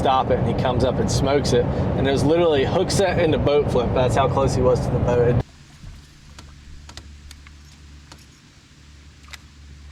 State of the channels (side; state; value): both; identical; correlation 1.00